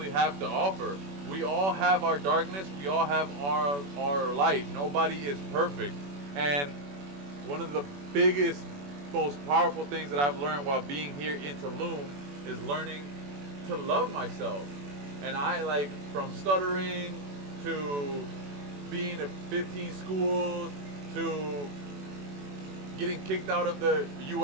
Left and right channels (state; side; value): late; left; 21 ms